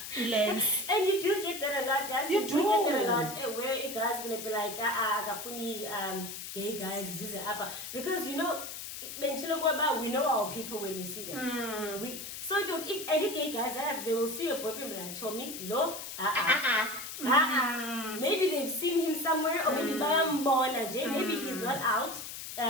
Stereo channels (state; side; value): noise; left; hiss, 8 dB below the sound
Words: lens. And you do get that a lot, guys. You do get that a lot. Where a guy's gonna be like, gay guys, this is upper, because we know our people when we see them. If any gay guys they will see your boyfriend like Tommy, maybe they've seen him somewhere, or maybe maybe he's not out